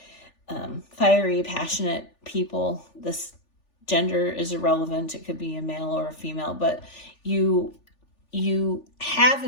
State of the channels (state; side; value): late; right; 3.4 ms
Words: fiery, passionate people. This gender is irrelevant. It could be a male or a female, but you have